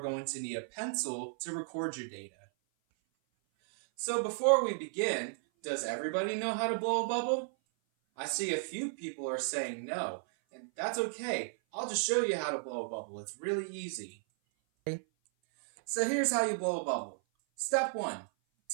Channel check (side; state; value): left; silent; 55 dB below the other